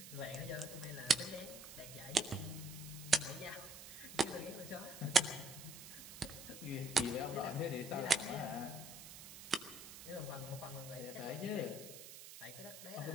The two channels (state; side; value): noise; right; hiss, 13 dB below the sound